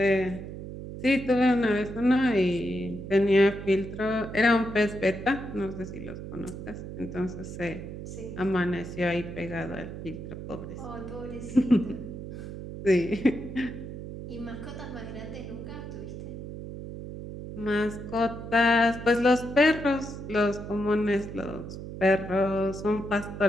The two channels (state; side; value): noise; right; hum, 9 dB below the sound